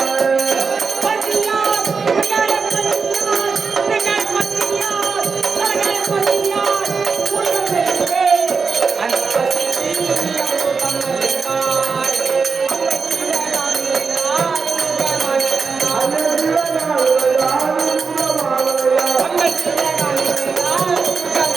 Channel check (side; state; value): left; quieter; 5.0 dB